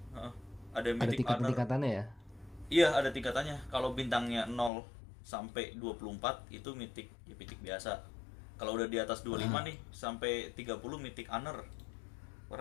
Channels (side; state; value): right; drops out; at 4.7 s